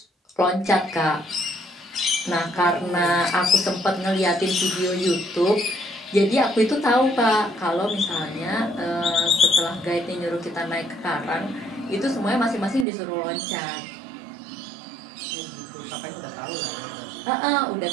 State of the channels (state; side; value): drops out; left; at 12.9 s